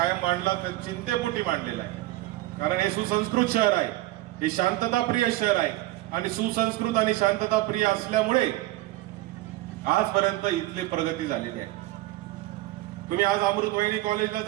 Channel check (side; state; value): left; quieter; 17.7 dB